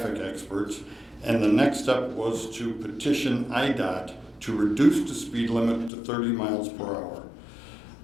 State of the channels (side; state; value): right; drops out; at 5.9 s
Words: experts, and the next step was to petition IDOT to reduce the speed limit to 30 miles per hour.